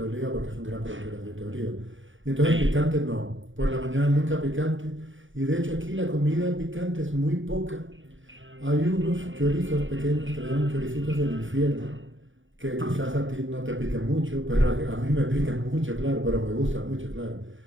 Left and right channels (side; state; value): left; late; 0.57 ms